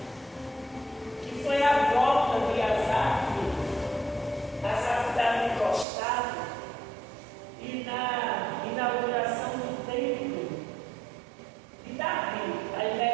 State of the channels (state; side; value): drops out; left; at 5.9 s